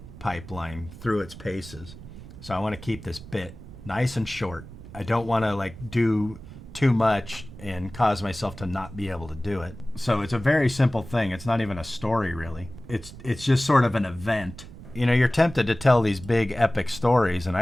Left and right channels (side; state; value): right; noise; rumble, 15 dB below the sound